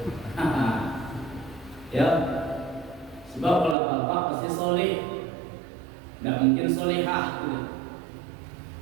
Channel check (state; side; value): drops out; left; at 3.8 s